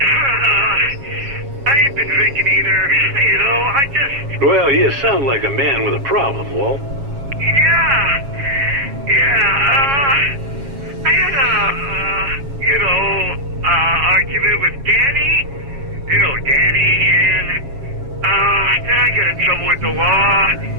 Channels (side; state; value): left; late; 7.3 ms